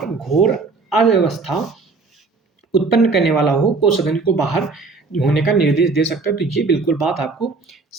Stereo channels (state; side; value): quieter; left; 4.1 dB